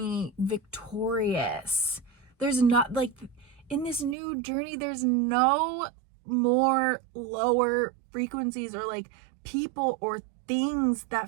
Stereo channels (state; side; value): drops out; left; at 4.2 s